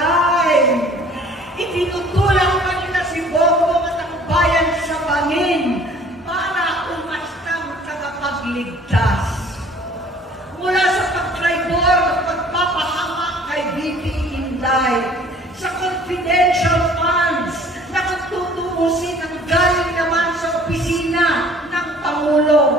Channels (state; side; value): normal; both; correlation 0.52